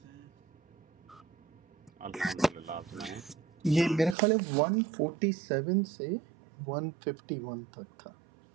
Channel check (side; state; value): left; drops out; at 4.2 s